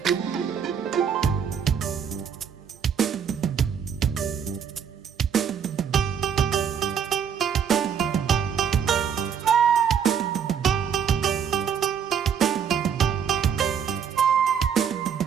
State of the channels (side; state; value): left; quieter; 7.6 dB